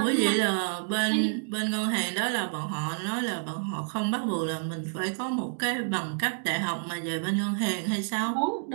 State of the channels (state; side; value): silent; left; digital silence